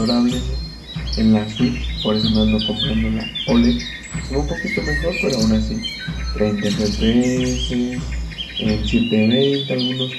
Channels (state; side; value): identical; both; correlation 1.00